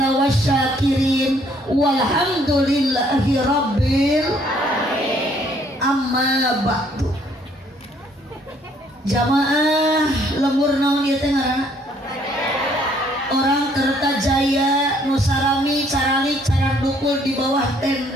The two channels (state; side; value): normal; both; correlation 0.64